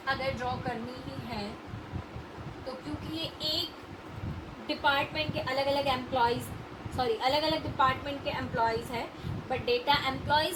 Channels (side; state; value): both; identical; correlation 1.00